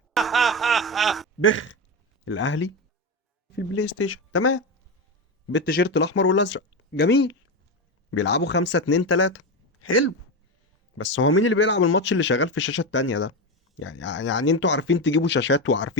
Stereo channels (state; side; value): normal; both; correlation 0.15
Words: بخ. الاهلي في البلاي ستيشن تمام، بالتيشيرت الاحمر والازرق. جميل. بيلعبوا 5-2-3. حلو. بس هو مين اللي بيلعب الماتش اللي شغال في الشاشه التانيه ده؟ يعني انتوا عارفين تجيبوا شاشات